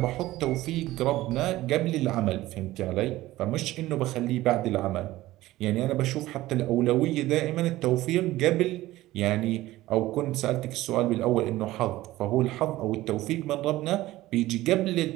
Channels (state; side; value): quieter; left; 16.7 dB